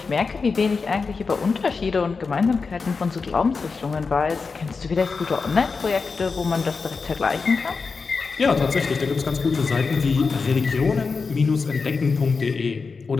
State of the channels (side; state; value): right; quieter; 4.7 dB